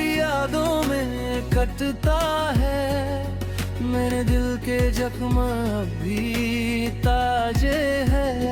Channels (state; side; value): identical; both; correlation 1.00